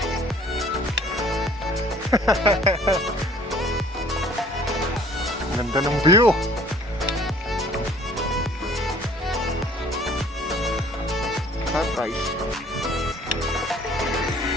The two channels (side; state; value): both; normal; correlation 0.53